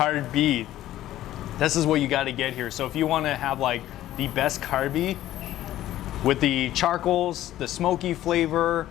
This is what you got to get here. So if you want to have like the best Carbi with the charcoals, the smoky flavor,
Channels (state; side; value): quieter; right; 13.8 dB